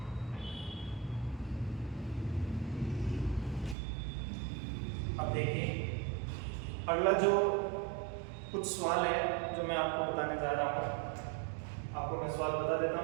अब देखिए अगला जो कुछ सवाल है जो मैं आपको बताने जा रहा हूँ, आपको मैं सवाल बता देता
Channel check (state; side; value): drops out; left; at 3.8 s